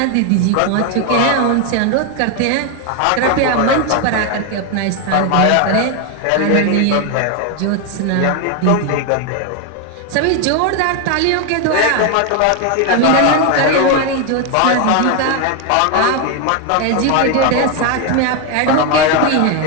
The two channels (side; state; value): both; different; correlation 0.01